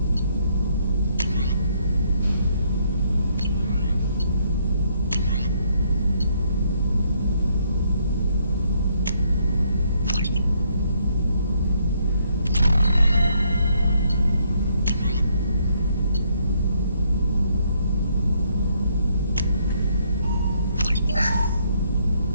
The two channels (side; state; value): both; inverted; correlation -0.71